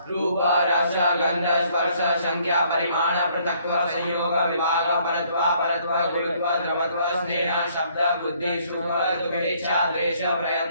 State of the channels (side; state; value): both; inverted; correlation -0.64